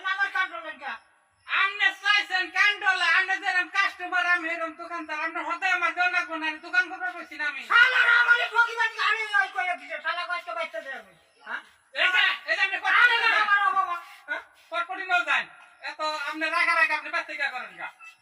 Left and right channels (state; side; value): identical; both; correlation 1.00